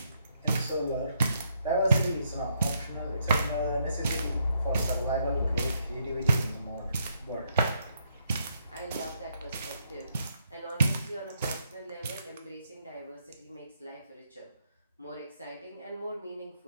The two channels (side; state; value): both; inverted; correlation -0.75